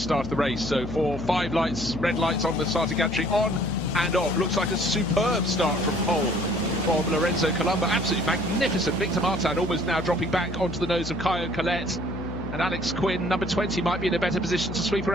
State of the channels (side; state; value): left; noise; hum, 8 dB below the sound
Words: of the race. So 5 lights, red lights on the starting gantry, on and off. Looks like a superb start from pole from Lorenzo Colombo. Absolutely magnificent. Victor Martin almost now dropping back onto the nose of Caio Collet. And Alex Quinn, number 20, might be in a better position to sweep